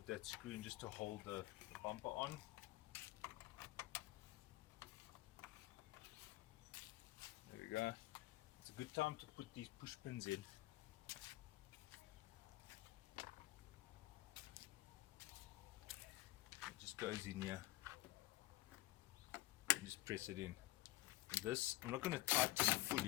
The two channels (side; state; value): right; quieter; 17.9 dB